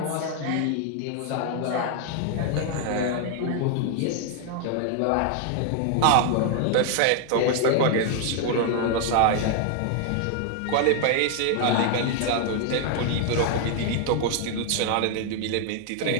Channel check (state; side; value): different; both; correlation 0.00